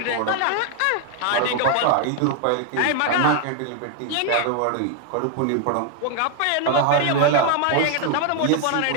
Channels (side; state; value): both; different; correlation 0.00